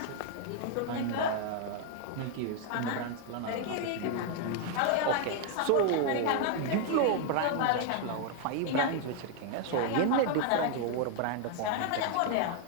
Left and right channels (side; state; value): both; different; correlation 0.00